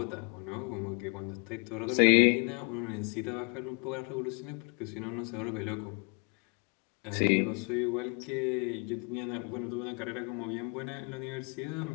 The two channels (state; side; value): quieter; right; 32.6 dB